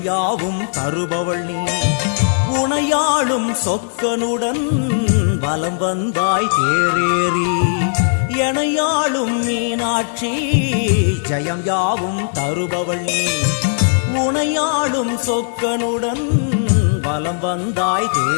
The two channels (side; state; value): right; silent; digital silence